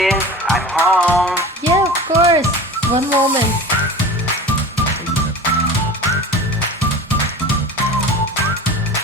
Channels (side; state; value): both; normal; correlation 0.36